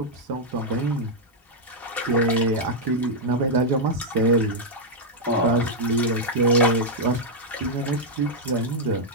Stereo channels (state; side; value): normal; both; correlation -0.03